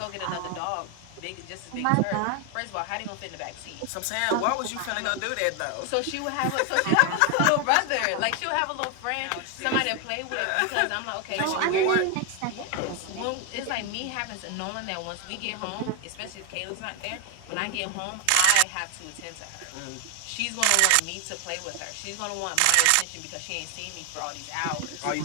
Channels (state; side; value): different; both; correlation 0.01